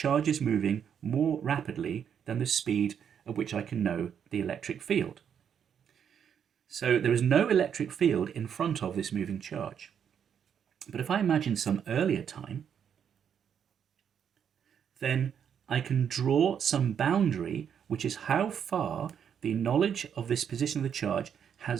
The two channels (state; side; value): quieter; left; 8.1 dB